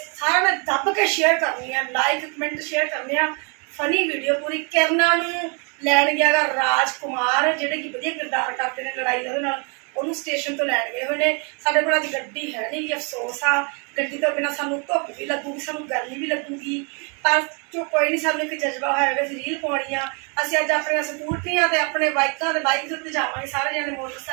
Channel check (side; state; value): left; quieter; 35.7 dB